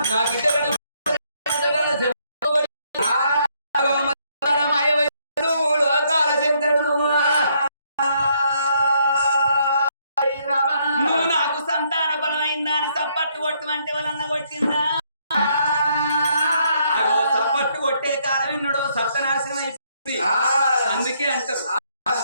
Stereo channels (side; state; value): both; inverted; correlation -0.71